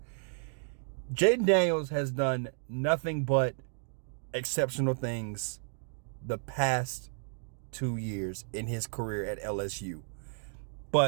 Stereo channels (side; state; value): left; silent; digital silence